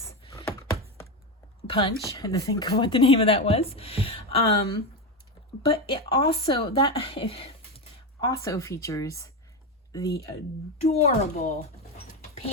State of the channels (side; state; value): both; normal; correlation 0.14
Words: punch. I had to think of what the name of that was. But it also features the adorable